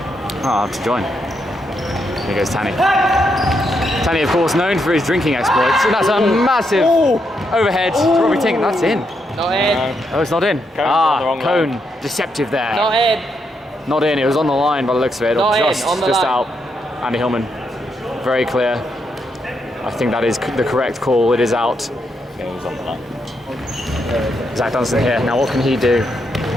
I'll have to join. Here goes Tanny. Tanny, of course, known for his drinking exploits. And that's a massive overhead to Robbie Tink. That's in. Not in. Oh, it's not in. on the wrong Cone. line. Deceptive there. Not in. Not in. It was on the line by the looks of it. Not Or in, on the just line. out. Andy Hillman. Very clear. I think that is the correct call. It is out. It was on the line. Zach Dunstan here. Now, what can he do?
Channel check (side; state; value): both; normal; correlation 0.80